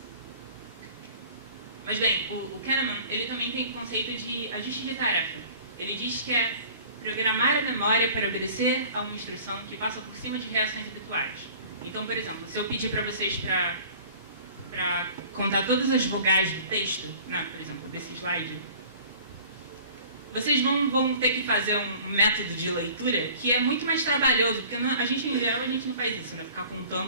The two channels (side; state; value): both; inverted; correlation -0.47